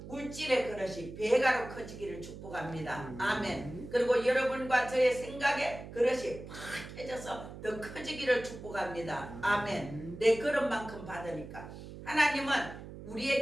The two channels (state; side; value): noise; right; hum, 13 dB below the sound